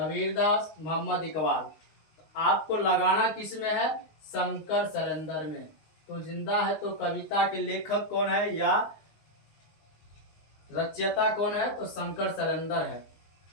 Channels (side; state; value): right; late; 19 ms